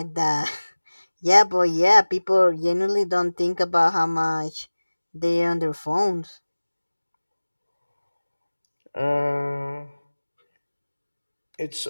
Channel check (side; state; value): both; inverted; correlation -1.00